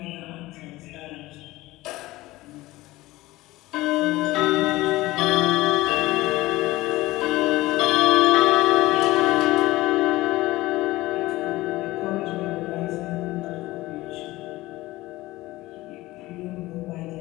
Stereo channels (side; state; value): right; quieter; 18.7 dB